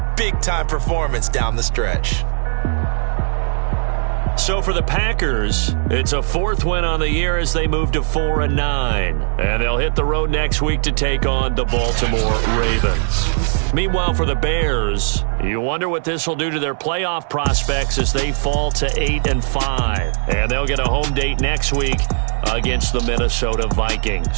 big-time performance down the stretch. So for the Packers, it's a 4th win on the year as they move to 4-9. And they'll hit the road next week to take on the Baltimore Ravens. Meanwhile, for the Bears, you wonder what this will do to their playoff prospects as they fall to 8-5. And they'll get a home date next week against the Minnesota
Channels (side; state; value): left; silent; digital silence